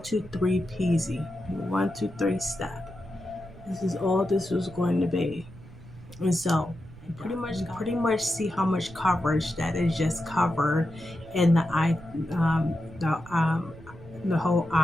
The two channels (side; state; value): right; noise; rumble, 18 dB below the sound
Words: 2, 3 peasy, 1, 2, 3 step. This is all this was going to be. And so you pretty much see how much coverage that is just covered in the eye, the whole